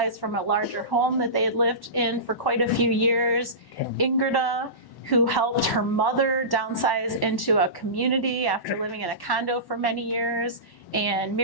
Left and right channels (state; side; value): late; right; 1.1 ms